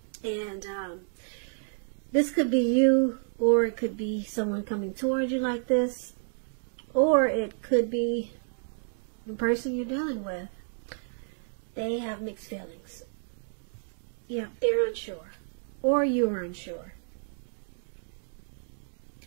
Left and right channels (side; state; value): left; silent; digital silence